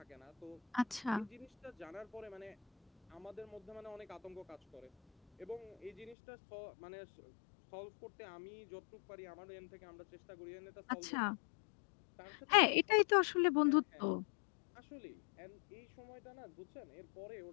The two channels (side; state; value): right; drops out; at 6.2 s